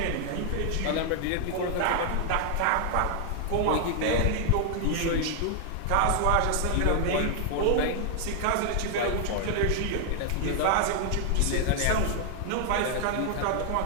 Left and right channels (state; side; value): different; both; correlation 0.00